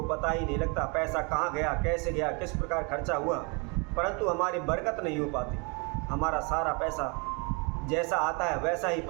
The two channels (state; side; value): quieter; left; 32.2 dB